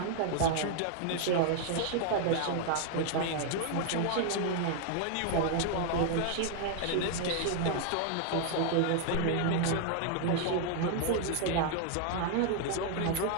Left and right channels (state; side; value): different; both; correlation 0.00